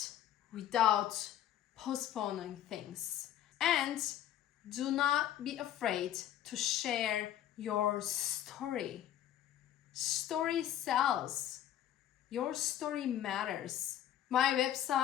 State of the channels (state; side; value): quieter; right; 11.4 dB